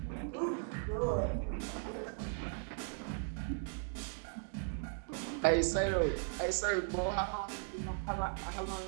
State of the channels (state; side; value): silent; left; 53 dB below the other